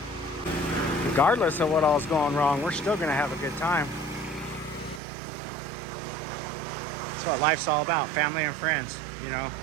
Regardless of what all's going wrong, we're still gonna have a good time. That's what life's all about, family and friends, you know.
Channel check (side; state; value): left; drops out; at 5.0 s